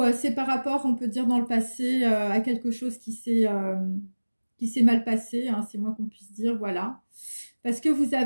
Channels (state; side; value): inverted; both; correlation -1.00